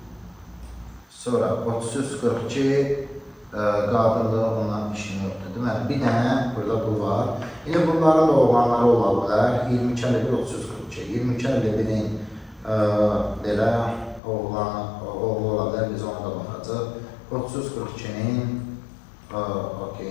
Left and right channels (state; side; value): drops out; right; at 14.2 s